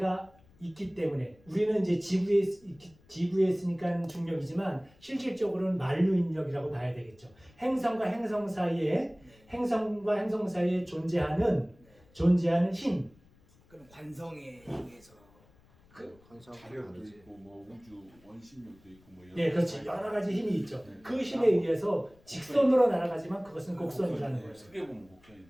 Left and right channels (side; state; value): left; noise; rumble, 29 dB below the sound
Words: 있기 때문에 우리는 이제 지구에 있으니까 중력이지만 실질적으로는 만류 인력이라고 봐야 되겠죠. 행성과 행성 사이에 존재하는 힘. 그럼 관성에 의해서 관상도 있고 뭐 우주 원심력도 있고 뭐 네, 그렇지. 여러 가지 힘이 있죠. 그 힘에 의해서 직선으로 날아가지만 그것은 곡선이라는 거예요. 크게 보면 곡선이